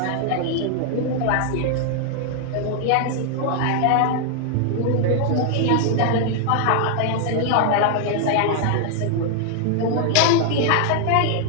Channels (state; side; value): different; both; correlation 0.00